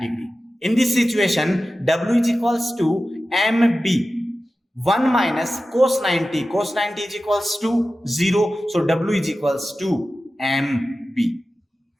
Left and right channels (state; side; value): normal; both; correlation 0.94